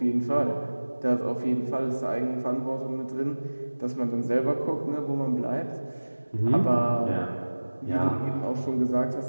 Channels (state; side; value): inverted; both; correlation -1.00